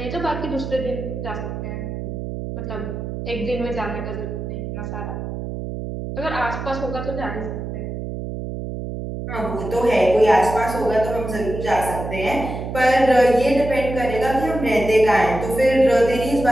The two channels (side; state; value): right; noise; hum, 6 dB below the sound